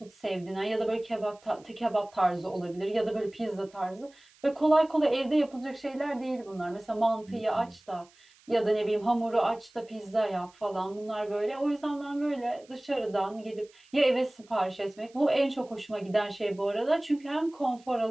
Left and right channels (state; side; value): noise; right; hiss, 29 dB below the sound